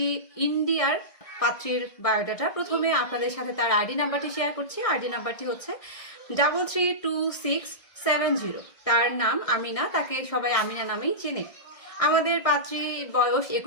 ইন্ডিয়ার পাত্রীর বায়োডাটা। প্রথমে আপনাদের সাথে তার আইডি নাম্বারটি শেয়ার করছি। আইডি নাম্বারটি হচ্ছে 332670। তার নাম আমিনা, তাকে সবাই আমিনা নামেই চেনে। আমাদের পাত্রী বয়স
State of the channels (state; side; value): late; right; 1.6 ms